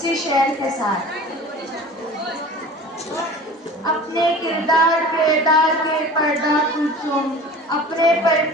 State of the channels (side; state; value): both; normal; correlation 0.40